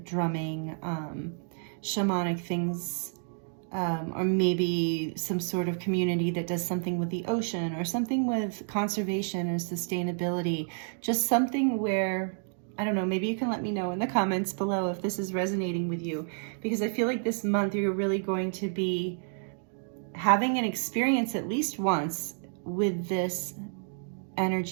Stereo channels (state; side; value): silent; left; 58 dB below the other